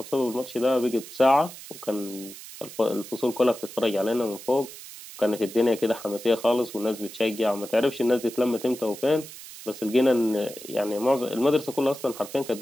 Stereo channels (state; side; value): noise; right; hiss, 14 dB below the sound